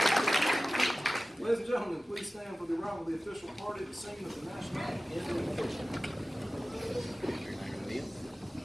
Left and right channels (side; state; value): both; normal; correlation 0.96